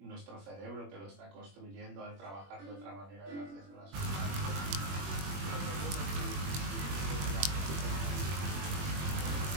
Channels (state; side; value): late; left; 21 ms